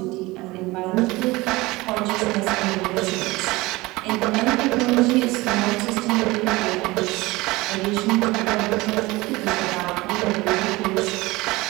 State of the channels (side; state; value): left; quieter; 21.1 dB